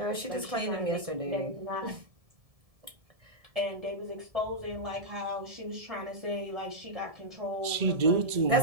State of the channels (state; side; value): late; left; 1.7 ms